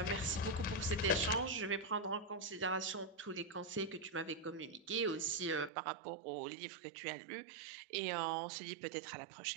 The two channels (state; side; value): drops out; left; at 5.7 s